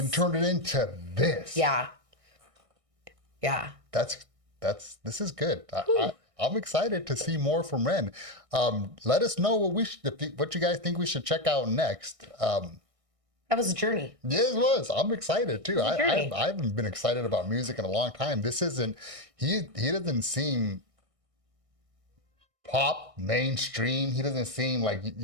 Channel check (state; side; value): late; left; 1.6 ms